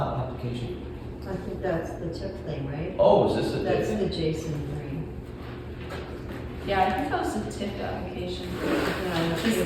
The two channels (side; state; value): both; identical; correlation 1.00